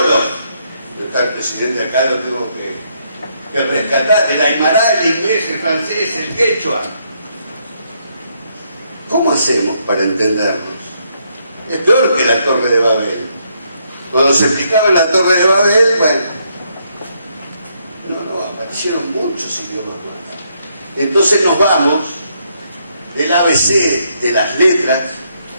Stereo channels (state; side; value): inverted; both; correlation -0.74